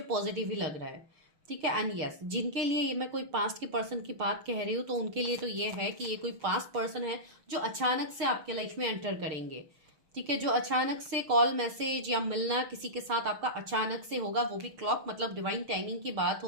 पॉजिटिव ही लग रहा है। ठीक है। एंड यस, जिनके लिए ये मैं कोई पास्ट के पर्सन की बात कह रही हूँ तो उनके लिए तो ये है कि ये कोई पास्ट पर्सन है जो अचानक से आपके लाइफ में एंटर करेंगे। ठीक है, जो अचानक से कॉल मैसेज या मिलना किसी के साथ आपका अचानक से होगा, वो भी क्लॉक मतलब डिवाइन टाइमिंग की बात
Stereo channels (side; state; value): left; late; 6.5 ms